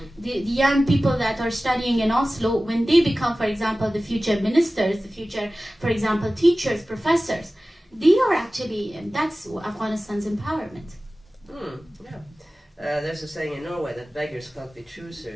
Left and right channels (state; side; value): normal; both; correlation 0.96